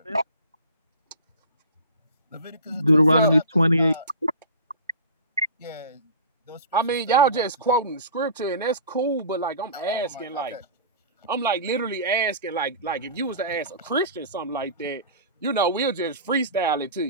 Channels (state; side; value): inverted; both; correlation -0.37